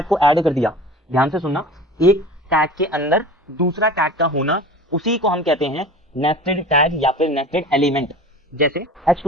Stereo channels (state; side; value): normal; both; correlation 0.38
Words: को ऐड कर दिया, ध्यान से सुनना, एक टैग के अंदर दूसरा टैग का होना, उसी को हम कहते हैं नेस्टेड टैग या फिर नेस्टेड एलिमेंट। जैसे